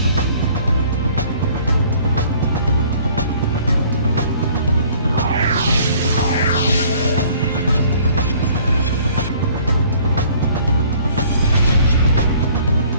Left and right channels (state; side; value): inverted; both; correlation -0.55